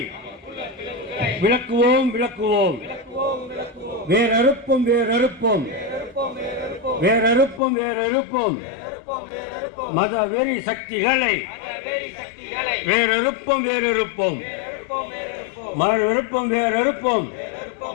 விளக்குவோம் விளக்குவோம், வேறறுப்போம் வேறறுப்போம், வேறறுப்போம் வேறறுப்போம், மத வெறி சக்திகளை வேறறுப்போம் வேறறுப்போம், மறுப்போம் வேறறுப்போம்,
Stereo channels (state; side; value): drops out; right; at 7.6 s